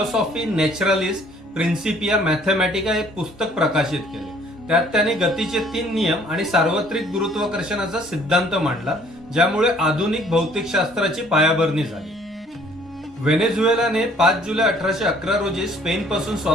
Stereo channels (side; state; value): both; normal; correlation 0.58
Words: नॅचरलिस प्रिन्सिपिया मॅथमॅटिका हे पुस्तक प्रकाशित केले. त्यात त्यांनी गतीचे 3 नियम आणि सार्वत्रिक गुरुत्वाकर्षणाचा सिद्धांत मांडला, ज्यामुळे आधुनिक भौतिकशास्त्राची पायाभरणी झाली. व्हेनेझुएलाने 5 जुलै 1811 रोजी स्पेनपासून